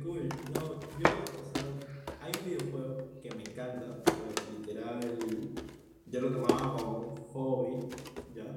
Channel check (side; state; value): both; identical; correlation 1.00